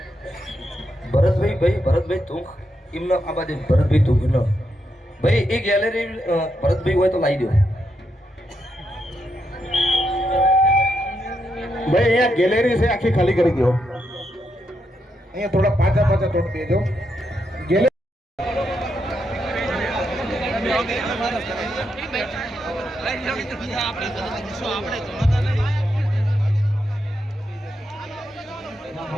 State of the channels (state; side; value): normal; both; correlation 0.82